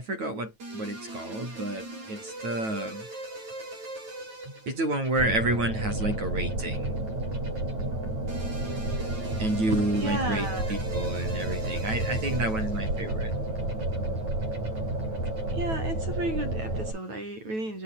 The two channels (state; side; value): late; left; 9.2 ms